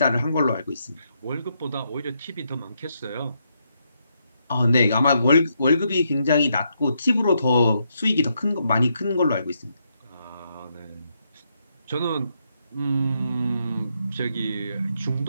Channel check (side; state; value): both; inverted; correlation -0.79